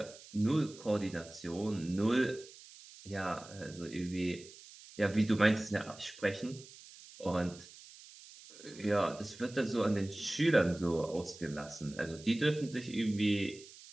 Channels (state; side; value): noise; right; hiss, 19 dB below the sound